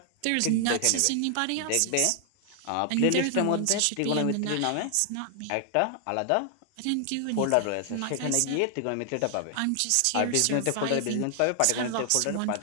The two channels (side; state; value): both; different; correlation 0.00